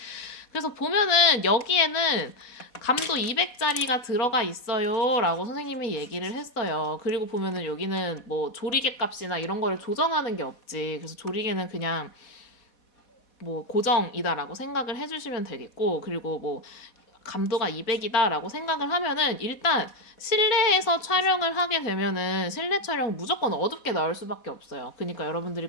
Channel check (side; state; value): right; late; 4.1 ms